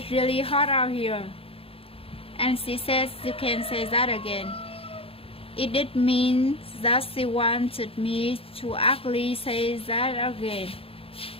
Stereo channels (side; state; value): right; late; 0.27 ms